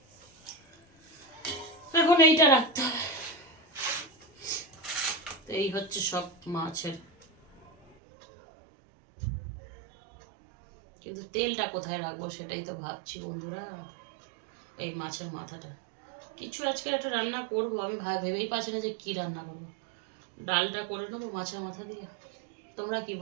এখন এইটা রাখতে হবে। এই হচ্ছে সব মাছের, কিন্তু তেলটা কোথায় রাখবো সেটাই তো ভাবছি বন্ধুরা। এই মাছের মাথাটা কিছু আজকে একটা রান্না করব, আমি ভেবেই পাচ্ছি না যে কি রান্না করবো। ডালটা করে নেবো মাছের মাথা দিয়ে। তোমরা কি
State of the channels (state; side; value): drops out; left; at 8.0 s